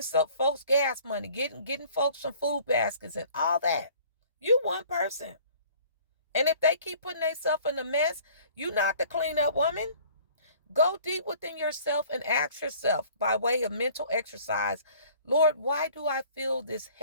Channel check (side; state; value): both; inverted; correlation -0.52